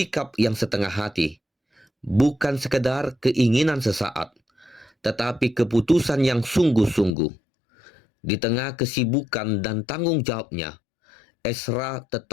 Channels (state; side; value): drops out; right; at 7.2 s